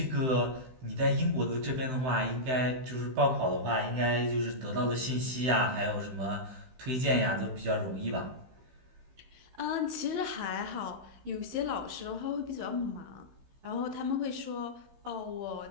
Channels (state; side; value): late; left; 16 ms